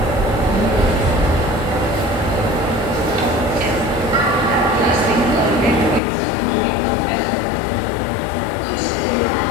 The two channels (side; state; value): right; drops out; at 6.0 s